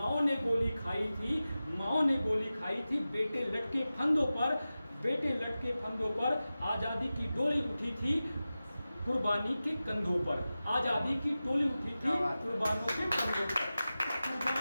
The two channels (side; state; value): both; inverted; correlation -0.95